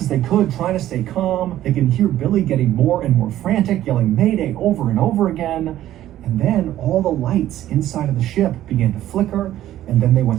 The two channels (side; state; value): left; quieter; 13.1 dB